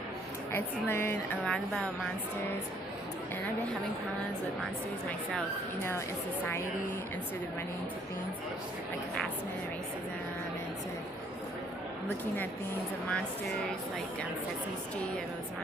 I had to learn a lot about monsters, and I've been having problems with monsters myself. In society, and sort of running into things like harassment, racism, and sort of looking at things of monsters like Sesame Street and those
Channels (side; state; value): both; normal; correlation 0.64